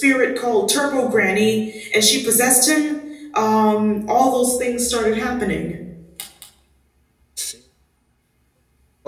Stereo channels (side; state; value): both; identical; correlation 1.00